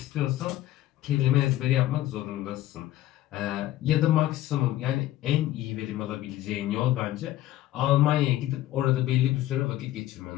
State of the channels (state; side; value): quieter; right; 14.3 dB